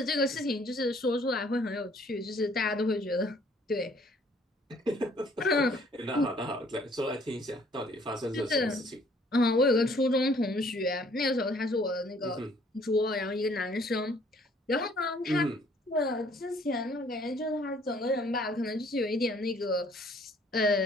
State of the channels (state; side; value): normal; both; correlation 0.60